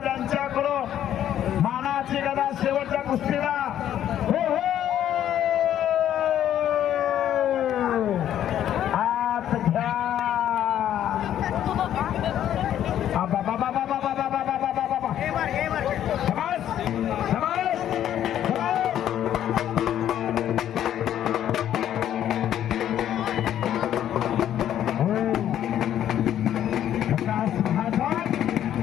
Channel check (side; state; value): right; quieter; 10.9 dB